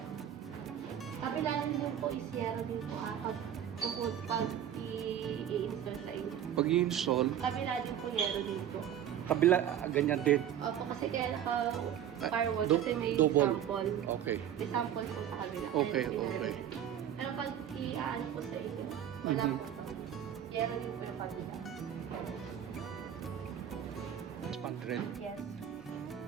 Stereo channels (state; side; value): quieter; left; 10.0 dB